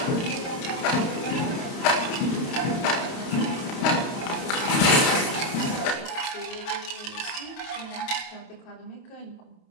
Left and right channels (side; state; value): right; late; 29 ms